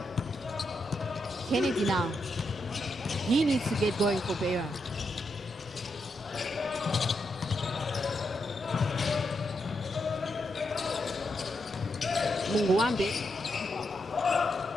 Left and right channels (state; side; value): normal; both; correlation 0.83